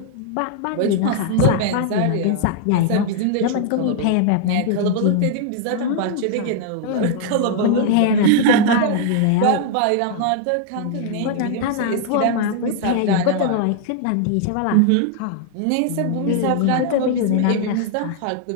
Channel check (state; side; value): different; both; correlation 0.00